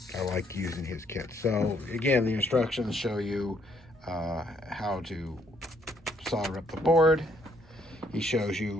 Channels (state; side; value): normal; both; correlation 0.68